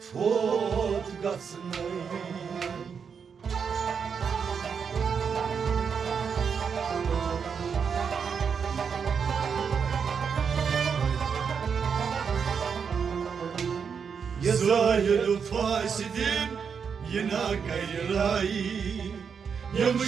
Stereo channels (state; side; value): quieter; left; 6.5 dB